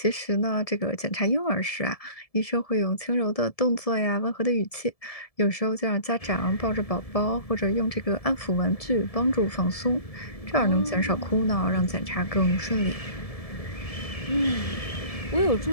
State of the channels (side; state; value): right; late; 1.7 ms